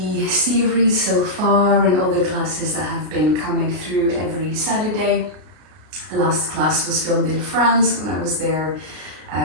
series so far and all the classes that have been coming through every Saturday. The last class was filmed in France when I was there.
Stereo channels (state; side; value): late; left; 33 ms